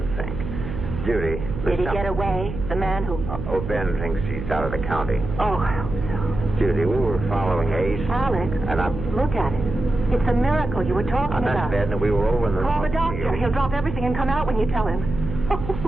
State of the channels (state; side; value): noise; right; hum, 7 dB below the sound